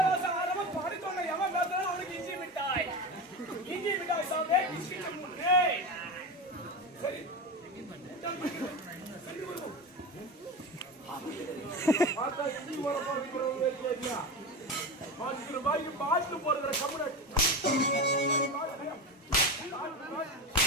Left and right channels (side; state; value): both; normal; correlation 0.23